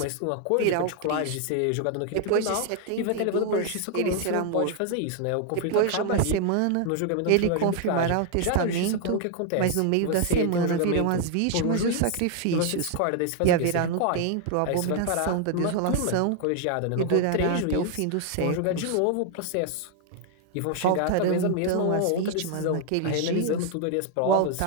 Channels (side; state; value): both; different; correlation 0.00